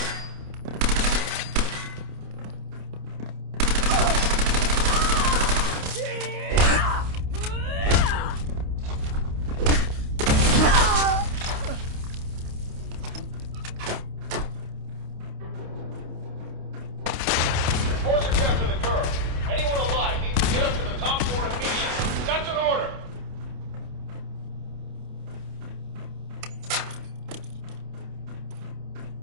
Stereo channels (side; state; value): left; late; 28 ms